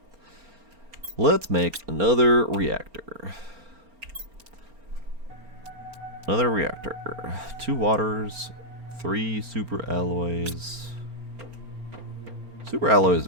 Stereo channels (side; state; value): left; late; 4.3 ms